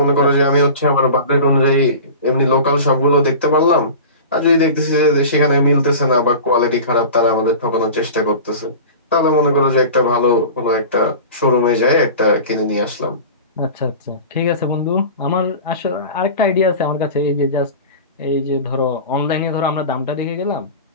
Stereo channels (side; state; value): both; inverted; correlation -0.35